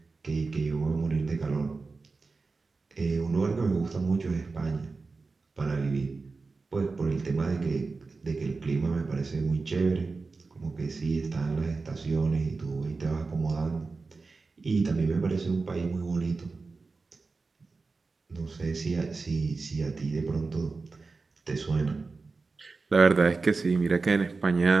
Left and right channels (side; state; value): left; quieter; 4.1 dB